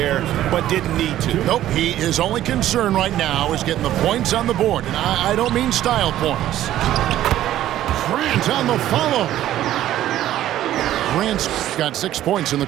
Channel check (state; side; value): quieter; left; 13.0 dB